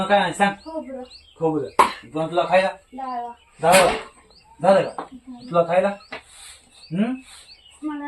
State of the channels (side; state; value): both; identical; correlation 1.00